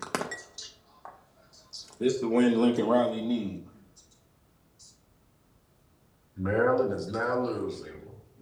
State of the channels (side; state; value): both; identical; correlation 1.00